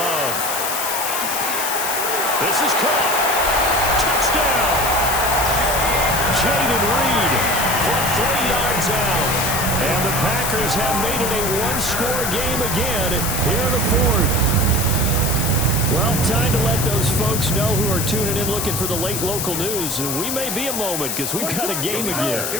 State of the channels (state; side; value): noise; left; hiss, 2 dB below the sound